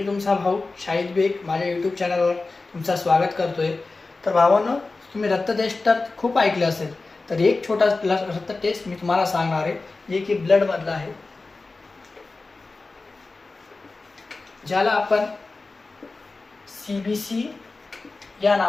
तुमचा भाऊ शाहिद बेग माझ्या यूट्यूब चॅनलवर तुमचं स्वागत करतोय। तर भावांनो, तुम्ही रक्त टेस्ट तर खूप ऐकले असेल, तर एक छोटा रक्त टेस्ट मी तुम्हाला सांगणार आहे, जे की ब्लड मधला आहे, ज्याला आपण CBC या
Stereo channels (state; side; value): quieter; right; 3.6 dB